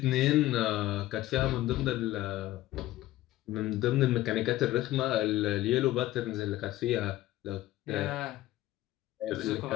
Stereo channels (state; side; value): quieter; right; 15.6 dB